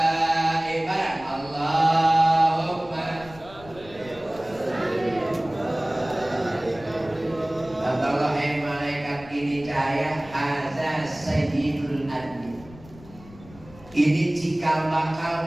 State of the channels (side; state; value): left; noise; rumble, 20 dB below the sound